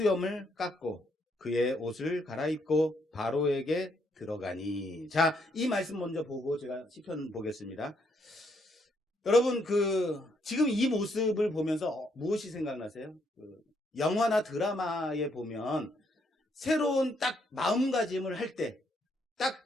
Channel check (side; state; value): both; normal; correlation 0.73